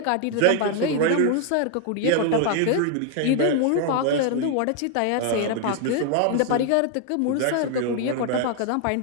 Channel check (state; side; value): different; both; correlation 0.00